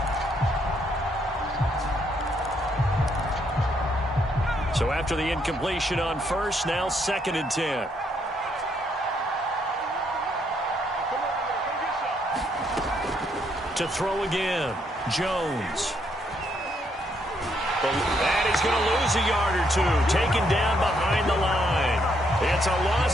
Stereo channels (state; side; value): normal; both; correlation 0.73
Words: So after the incompletion on 1st, now 2nd and 10. To throw again, Jones. And he's going to lose a yard or two, taken down behind the line. It's a